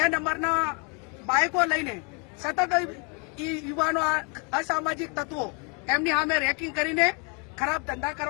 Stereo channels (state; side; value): quieter; right; 34.9 dB